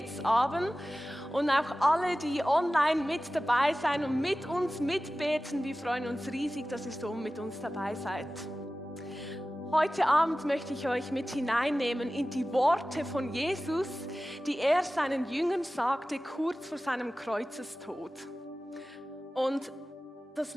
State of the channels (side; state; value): both; normal; correlation 0.96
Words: und auch alle, die online mit dabei sein und mit uns mitbeten. Wir freuen uns riesig, dass ihr so mit uns dabei seid. Heute Abend möchte ich euch mit hineinnehmen in die Worte von Jesus, die er seinen Jüngern sagte, kurz vor seinem Kreuzestod. Und das